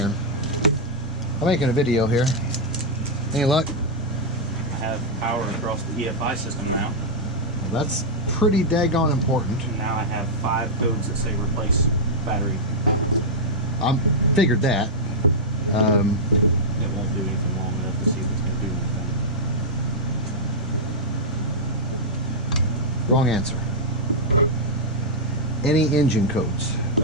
I'm making a video here. Any luck? I have power across the EFI system now. Well, that's pretty daggone important. And now I have 5 codes that say replace battery. I figured that. It won't do anything long enough to see if it's going to do anything. Wrong answer. Any engine codes?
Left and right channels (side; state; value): both; normal; correlation -0.07